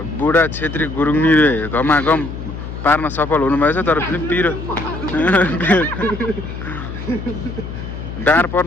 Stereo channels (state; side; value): noise; left; hum, 9 dB below the sound